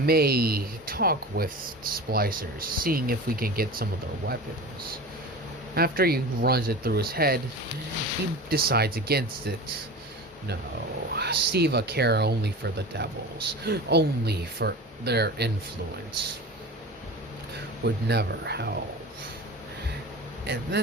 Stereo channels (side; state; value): both; normal; correlation 0.33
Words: talk with Splicers, seeing if we can get some of their weapons. After he runs it through his head, he decides against it. No, SIVA care only for the devils, only for their influence. Would never help. And